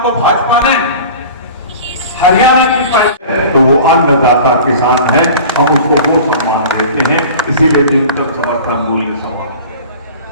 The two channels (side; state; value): both; inverted; correlation -0.39